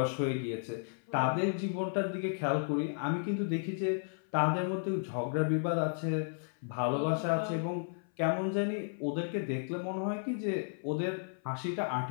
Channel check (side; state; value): right; silent; 55 dB below the other